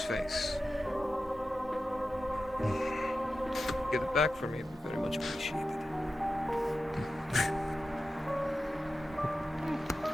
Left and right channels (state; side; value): normal; both; correlation 0.93